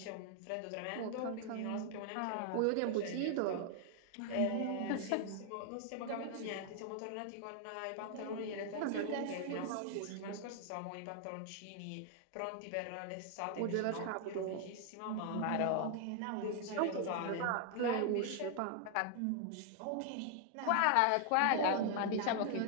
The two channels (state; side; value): different; both; correlation 0.00